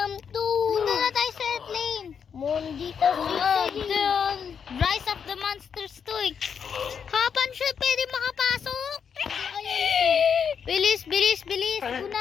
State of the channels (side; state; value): right; quieter; 7.0 dB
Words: to! Punta na tayo sa airplane. Mondi kasi. Rise of the Monsters 2. Hapan siya, pwede makapasok. Bilis, bilis, bilis.